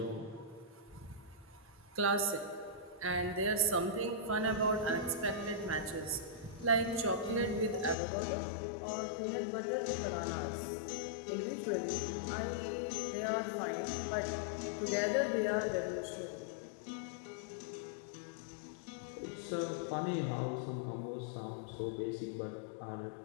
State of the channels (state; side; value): drops out; right; at 8.0 s